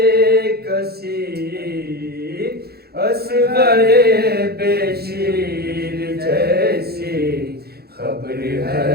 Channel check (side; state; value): left; late; 0.46 ms